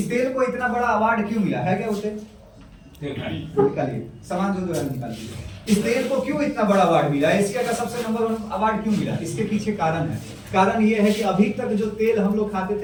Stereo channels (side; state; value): both; identical; correlation 1.00